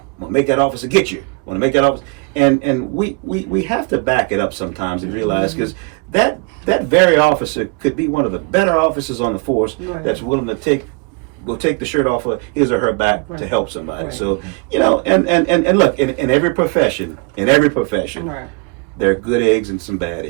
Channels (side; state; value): left; quieter; 31.5 dB